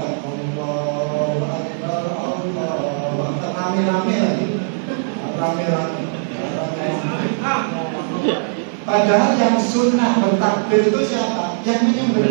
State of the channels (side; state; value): left; silent; digital silence